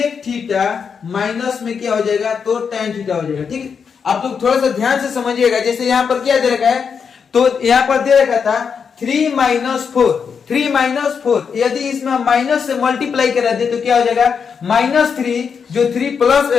थीटा माइनस में क्या हो जाएगा, तो tan थीटा हो जाएगा। ठीक, आप लोग थोड़ा सा ध्यान से समझिएगा, जैसे यहाँ पर क्या दे रखा है, तो यहाँ पर दे रखा था 3 - 4 यदि इसमें हम माइनस से मल्टीप्लाई करा दे तो क्या हो जाएगा -3, जो 3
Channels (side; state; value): right; quieter; 6.4 dB